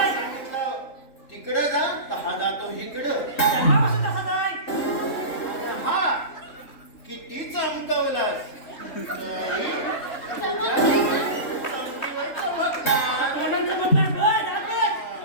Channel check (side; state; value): right; late; 3.7 ms